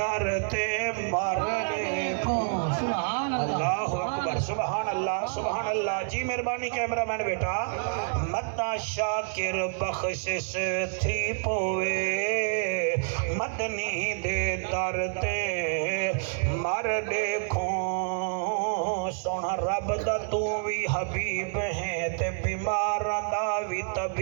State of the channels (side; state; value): left; silent; 59 dB below the other